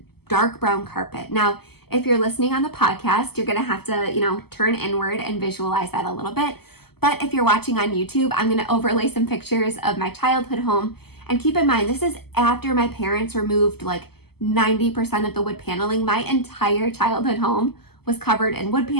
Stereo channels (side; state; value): right; late; 0.96 ms